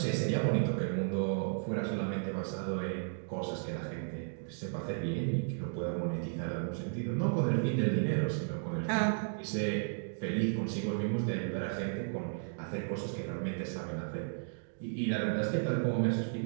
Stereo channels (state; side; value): silent; left; digital silence